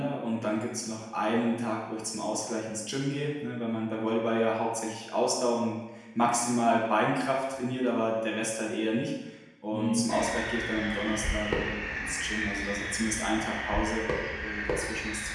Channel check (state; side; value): identical; both; correlation 1.00